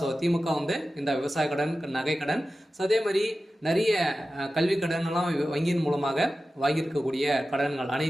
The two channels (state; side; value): normal; both; correlation 0.94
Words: திமுக வந்து இந்த விவசாய கடன், நகை கடன், அதே மாதிரி நிறைய கல்வி கடன் எல்லாம் வங்கியின் மூலமாக வாங்கியிருக்கக்கூடிய கடன்கள்